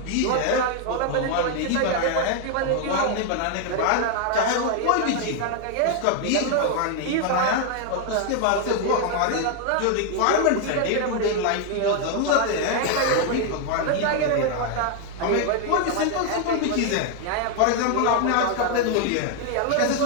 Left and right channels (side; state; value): both; different; correlation 0.00